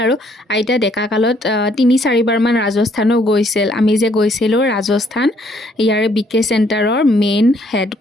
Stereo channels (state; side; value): normal; both; correlation 0.66